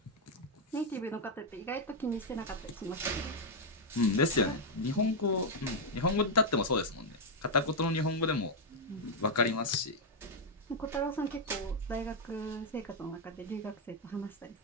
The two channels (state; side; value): normal; both; correlation 0.00